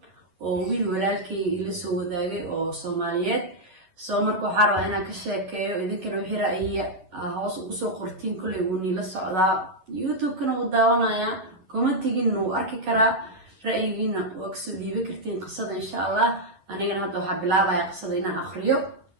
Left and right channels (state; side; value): late; left; 11 ms